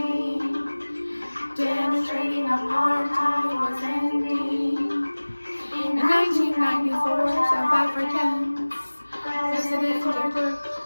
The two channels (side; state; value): both; inverted; correlation -1.00